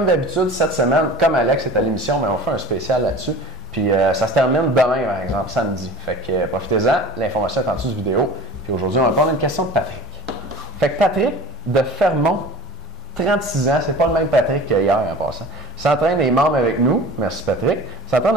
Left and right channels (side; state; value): both; normal; correlation 0.41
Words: d'habitude, cette semaine, comme Alex est à l'émission, on fait un spécial là-dessus. Puis ça se termine demain, par exemple, samedi. Fait que profitez-en. L'information est en dessous du vidéo. Puis aujourd'hui, on va prendre une question de Patrick. Fait que Patrick de Fermont, 36 ans, c'est pas le même Patrick qu'hier en passant. S'entraîne et est membre avec nous. Merci Patrick. S'entraîne